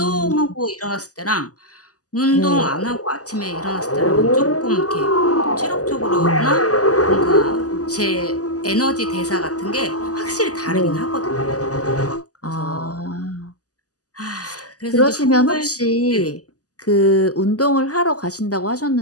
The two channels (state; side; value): late; right; 0.67 ms